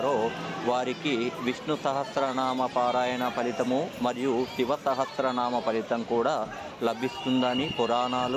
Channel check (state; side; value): identical; both; correlation 1.00